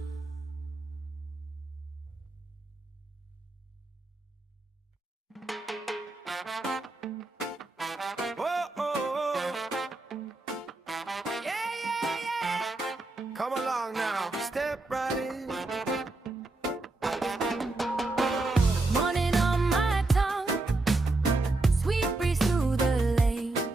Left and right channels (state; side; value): quieter; left; 3.1 dB